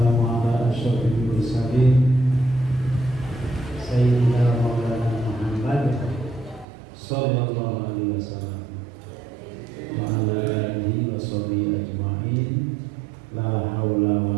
ala asyrofil mursalin Sayyidina Maulana Muhammad sallallahu alaihi wasallam wa ala alihi wa sahbihi ajma'in. La haula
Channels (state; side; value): drops out; left; at 6.7 s